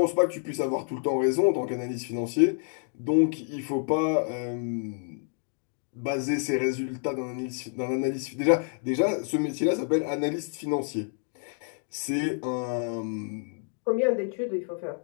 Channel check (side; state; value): right; silent; 56 dB below the other